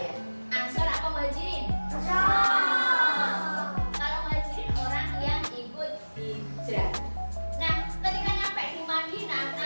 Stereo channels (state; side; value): inverted; both; correlation -1.00